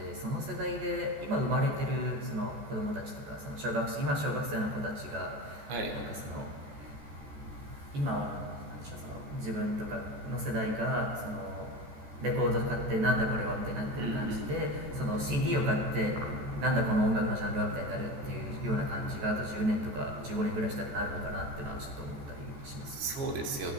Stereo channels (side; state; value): left; late; 14 ms